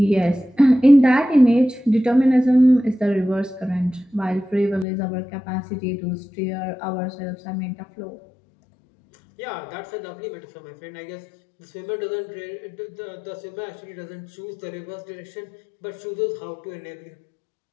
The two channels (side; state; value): right; drops out; at 4.9 s